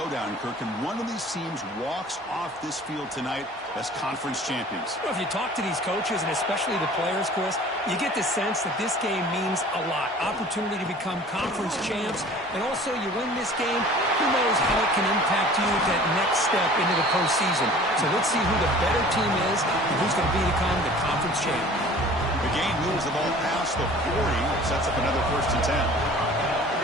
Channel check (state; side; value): normal; both; correlation 0.46